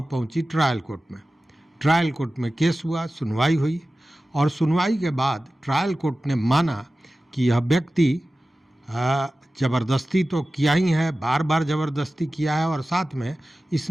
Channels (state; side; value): normal; both; correlation 0.95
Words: पहुंची ट्रायल कोर्ट में। ट्रायल कोर्ट में केस हुआ, सुनवाई हुई और सुनवाई के बाद ट्रायल कोर्ट ने माना कि यह व्यक्ति ज़बरदस्ती तो किया ही है, बार बार ज़बरदस्ती किया है और साथ में